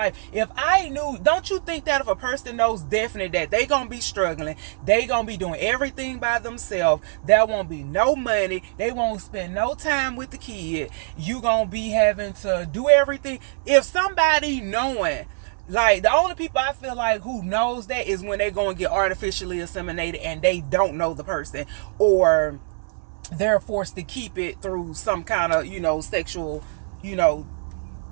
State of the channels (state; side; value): silent; left; 63 dB below the other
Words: If I knew, don't you think that if a person knows definitely that they gonna be struggling, they gonna be doing everything by themselves, there won't be no money, they won't spend no time with the kid, you gonna be having to do everything. If somebody knowing, like, the only people I feel like who knows that is when they go and get artificially inseminated and they don't know the person, or they're forced to keep it through some kind of, sexual,